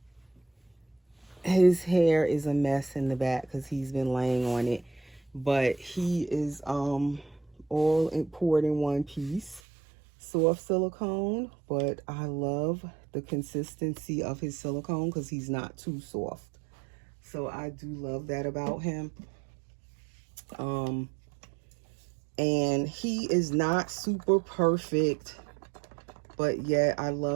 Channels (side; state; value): left; drops out; at 9.6 s